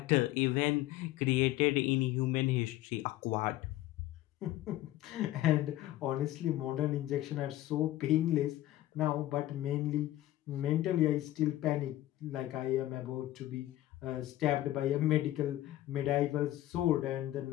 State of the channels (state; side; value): quieter; right; 15.0 dB